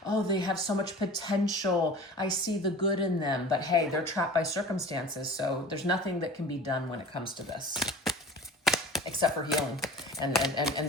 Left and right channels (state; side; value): normal; both; correlation 0.39